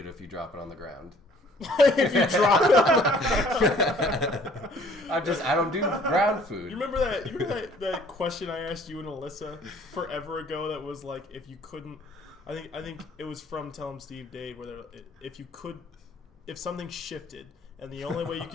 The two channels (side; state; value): both; normal; correlation 0.57